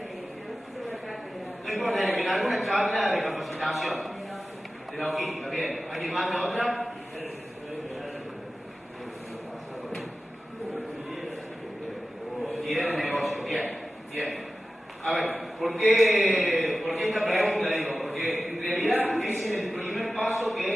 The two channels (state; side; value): normal; both; correlation 0.95